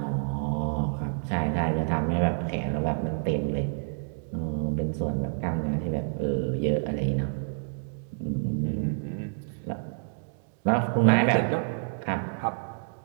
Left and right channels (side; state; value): left; silent; digital silence